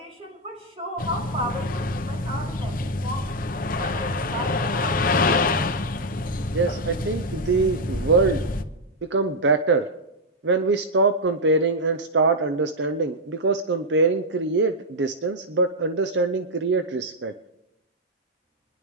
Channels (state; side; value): normal; both; correlation 0.00